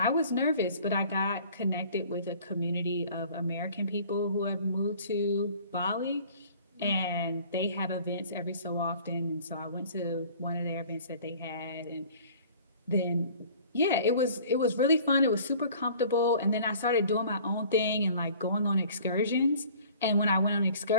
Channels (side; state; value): both; inverted; correlation -0.50